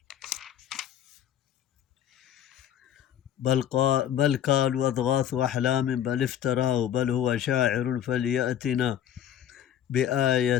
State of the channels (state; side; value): quieter; right; 10.3 dB